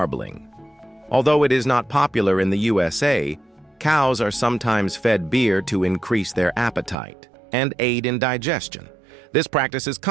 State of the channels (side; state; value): left; drops out; at 7.0 s